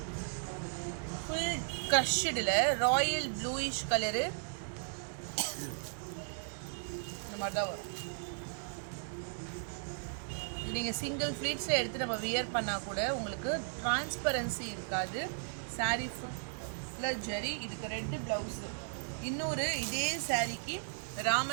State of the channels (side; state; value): left; silent; 54 dB below the other